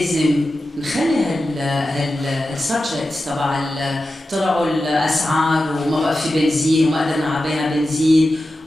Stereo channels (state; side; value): normal; both; correlation 0.92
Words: نخلي هالسبجكتس تبع طلعوا الاسعار وما بقى في بنزين وما قدرنا نعبيها بنزين